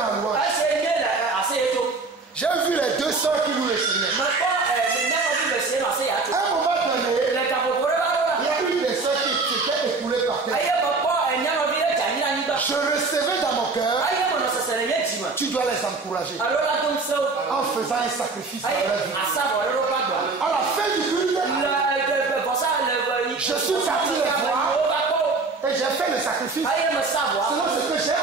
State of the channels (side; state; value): left; quieter; 4.0 dB